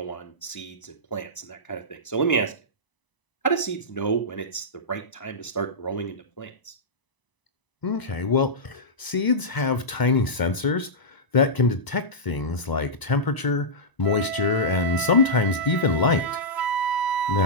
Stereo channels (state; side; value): late; right; 1.0 ms